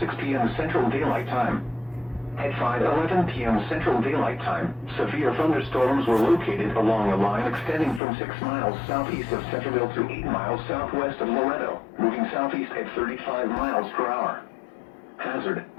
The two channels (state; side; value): drops out; right; at 8.0 s